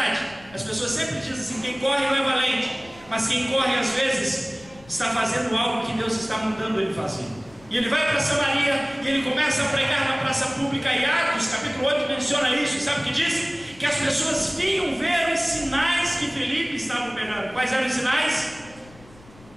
As pessoas sempre dizem assim: quem corre não é valente, mas quem corre às vezes está fazendo algo que Deus está mandando ele fazer. E ele vai para Samaria e ele começa a pregar na praça pública. E Atos capítulo 8 menciona isso. Sabe o que diz? Que as pessoas vinham ver os sinais que Felipe estava operando. Quais eram os sinais?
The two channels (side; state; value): left; noise; rumble, 23 dB below the sound